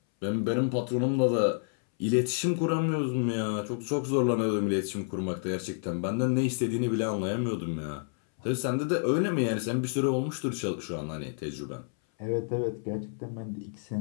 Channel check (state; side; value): silent; right; 58 dB below the other